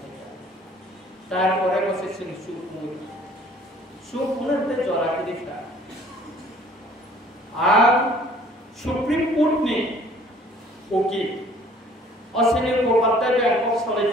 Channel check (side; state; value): both; normal; correlation 0.55